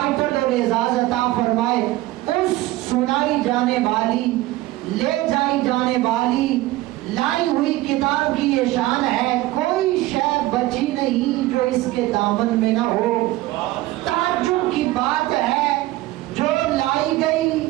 اور اعزاز عطا فرمائے، اس سنائی جانے والی، لے جائی جانے والی، لائی ہوئی کتاب کی یہ شان ہے. کوئی شے بچی نہیں جو اس کے دامن میں نہ ہو. تعجب کی بات ہے جو لائی گئی،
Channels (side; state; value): left; quieter; 17.6 dB